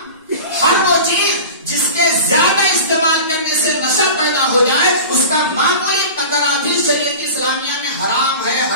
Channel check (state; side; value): inverted; both; correlation -0.34